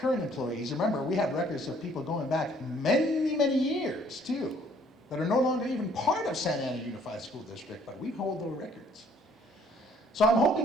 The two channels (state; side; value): normal; both; correlation 0.61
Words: employees. Remember, we have records of people going back many, many years, too, that are no longer even part of Santa Ana Unified School District, but we hold those records. So I'm